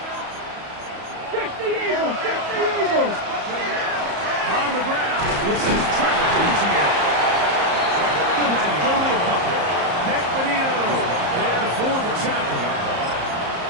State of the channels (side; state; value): left; late; 34 ms